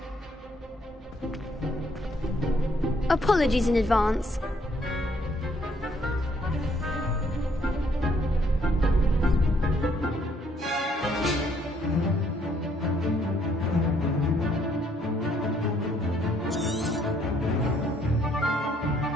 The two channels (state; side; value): normal; both; correlation 0.67